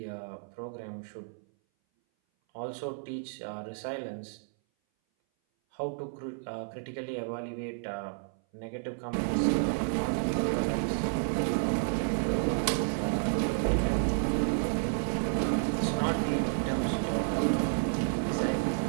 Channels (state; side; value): silent; left; 57 dB below the other